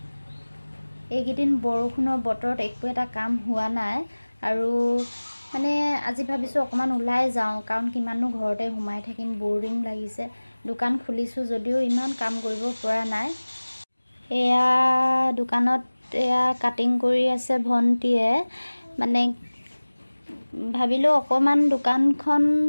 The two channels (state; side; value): inverted; both; correlation -1.00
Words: এইকেইদিন বৰষুণৰ বতৰত একো এটা কাম হোৱা নাই আৰু মানে আজি ভাবিছোঁ অকণমান ওলাই যাওঁ, কাৰণ কিমাননো ঘৰতে সোমাই থাকিম, বৰিং লাগিছে। দোকান খুলিছোঁ যদিও ইমান কাম কৰিব পৰা নাই। এয়া দোকানত এয়া কাটিং কৰি আছে ভণ্টিয়ে, মানে ভাবিলোঁ অকণমান দোকানখন